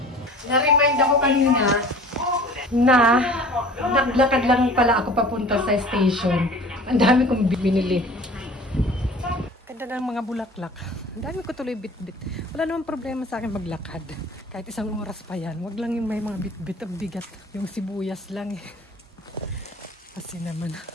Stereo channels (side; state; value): both; normal; correlation 0.44